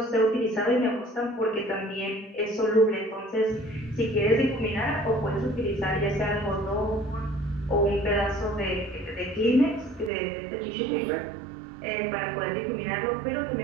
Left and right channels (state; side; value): drops out; left; at 10.1 s